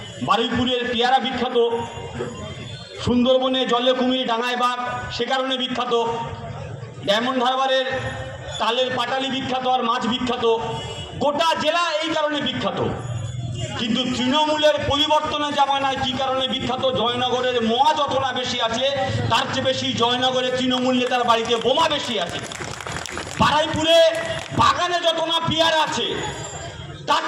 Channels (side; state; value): both; identical; correlation 1.00